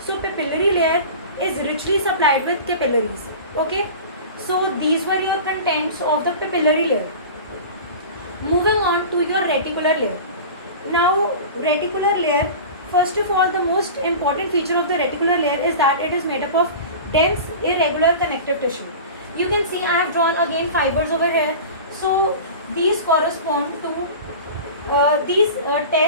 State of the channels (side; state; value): both; inverted; correlation -0.34